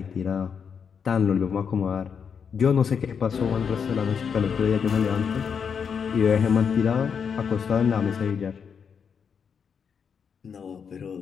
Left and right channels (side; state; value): right; quieter; 6.7 dB